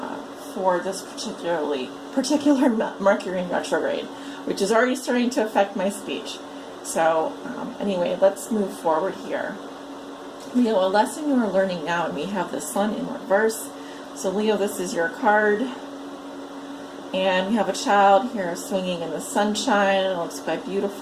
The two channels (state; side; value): identical; both; correlation 1.00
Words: for this particular Mercury in retrograde, which is already starting to affect my speech. So anyway, let's move forward here. Leo, a lesson you are learning now, and we have the Sun in reverse. So Leo, this is your card. And we have a child here swinging in the sunshine. It looks quite